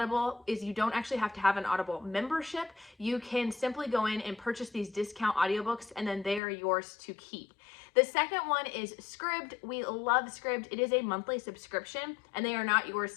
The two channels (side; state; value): right; drops out; at 6.4 s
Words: is you don't actually have to have an Audible membership. You can simply go in and purchase these discount audiobooks, and then they are yours to keep. The second one is Scribd. We love Scribd. It is a monthly subscription, and they are not yours